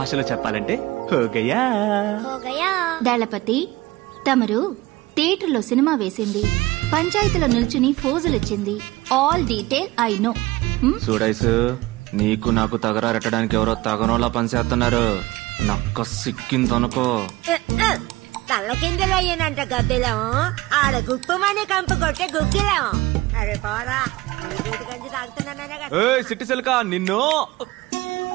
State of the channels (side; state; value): left; quieter; 19.5 dB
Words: చెప్పాలంటే హోగయా. దళపతి, తమరు థియేటర్లో సినిమా వేసింది, పంచాయతీలో నిల్చుని ఫోజులిచ్చింది, ఆల్ డీటెయిల్ ఐ నో. చూడైసు, నీకు నాకు తగరారెట్టడానికి ఎవరో తగనోలా పనిచేస్తున్నారు. నక్క సిక్కిందనుకో. తల్ల కిందలు అయ్యానంట గద్దెలం, ఆడ గుప్పమని కంపు కొట్టే గుగ్గిలం. అరే పోరా, గంజి తాగుతున్నానే కదా. సిట్టి సిల్కా నిన్ను.